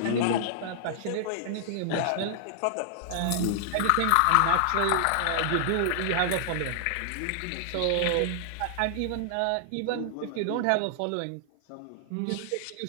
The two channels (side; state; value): both; different; correlation -0.01